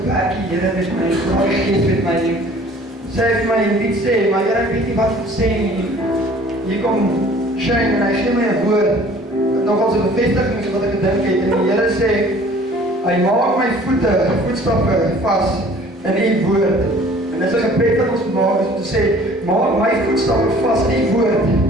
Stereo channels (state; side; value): normal; both; correlation 0.51